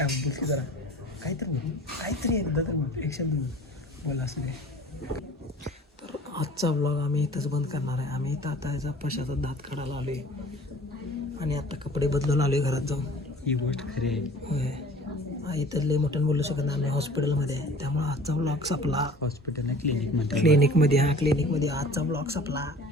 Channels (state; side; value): normal; both; correlation 0.46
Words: बोल की जरा काहीतरी एकदा तर बोल एक शब्द बोल असं नाही. तर आजचा ब्लॉग आम्ही इथंच बंद करणार आहे. आम्ही इथं आता याचा पशाचा दात काढायला आलो आहे आणि आता कपडे बदलून आलो आहे घरात जाऊन. ही गोष्ट खरी आहे. होय इथं लय मोठ्यानं बोलू शकत नाही हॉस्पिटलमध्ये आहे त्यामुळे आजचा ब्लॉग संपला. हॉस्पिटल क्लिनिकमध्ये क्लिनिकमध्ये आजचा ब्लॉग संपला.